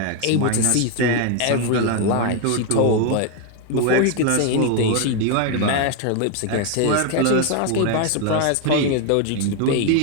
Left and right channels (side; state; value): both; different; correlation 0.01